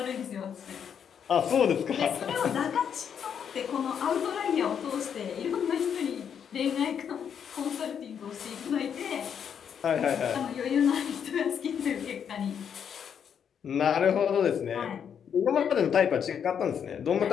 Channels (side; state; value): right; quieter; 7.9 dB